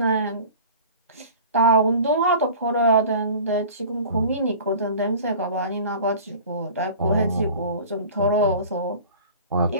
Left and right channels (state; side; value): inverted; both; correlation -0.41